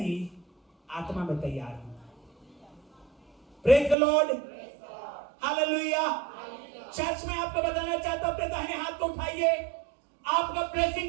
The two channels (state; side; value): drops out; left; at 4.0 s